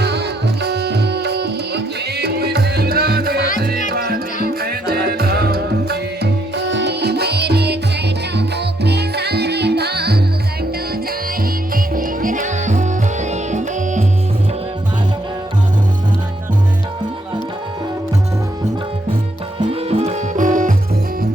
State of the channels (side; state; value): both; normal; correlation 0.74